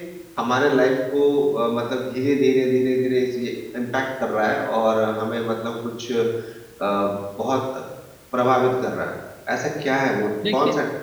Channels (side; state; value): both; identical; correlation 1.00